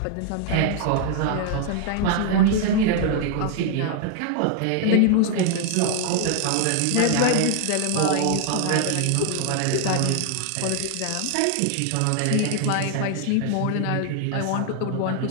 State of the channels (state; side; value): different; both; correlation 0.00